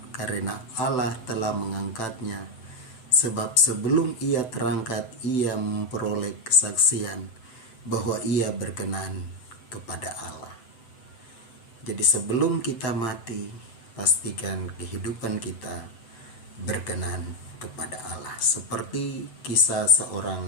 karena Allah telah mengangkatnya, sebab sebelum ia terangkat ia memperoleh kesaksian bahwa ia berkenan kepada Allah. Jadi sebelum kita mati, pastikan kehidupan kita berkenan kepada Allah. Seperti kisah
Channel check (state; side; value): late; right; 7.9 ms